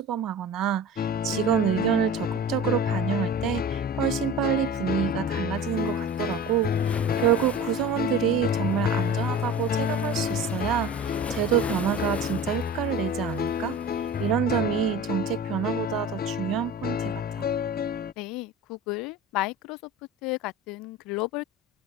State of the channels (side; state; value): both; normal; correlation 0.36